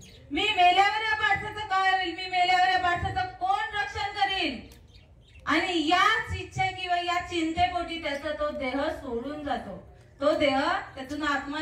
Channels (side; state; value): both; identical; correlation 1.00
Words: मी मेल्यावर या पाडसाचं काय होईल, मी मेल्यावर या पाडसाचं कोण रक्षण करील. आणि याच इच्छा किंवा या चिंतेपोटी त्याचा तो देह सोडून जातो. तो देह त्यातून आत्मा